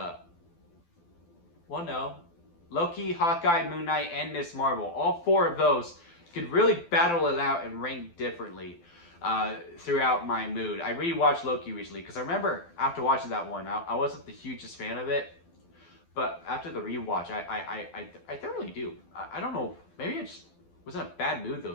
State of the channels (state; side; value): late; right; 12 ms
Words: no. Loki, Hawkeye, Moon Knight, and Miss Marvel. All 4 of those could really battle it out and rank differently throughout my mood. I rewatched Loki recently because I remember after watching that one, I wasn't the hugest fan of it. But after the rewatch, I thoroughly do. I don't know. Maybe I just was in a bad mood